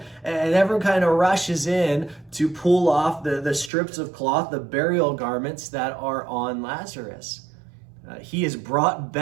And everyone kind of rushes in to pull off the strips of cloth, the burial garments that are on Lazarus. He is brought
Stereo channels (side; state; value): left; drops out; at 3.7 s